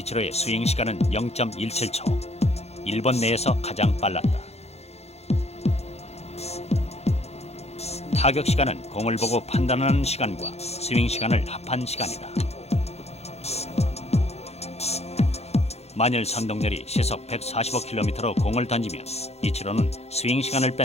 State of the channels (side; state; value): right; late; 0.31 ms